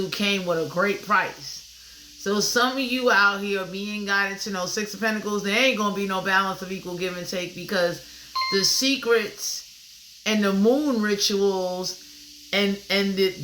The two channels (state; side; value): identical; both; correlation 1.00